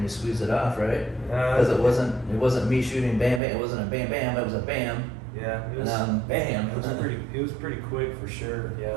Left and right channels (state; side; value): drops out; left; at 3.4 s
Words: you squeezed it off, right? Because it wasn't me shooting bam bam. It wasn't a bam bam. It was a bam. Yeah, it was. Bam. It was pretty quick for sure. Yeah,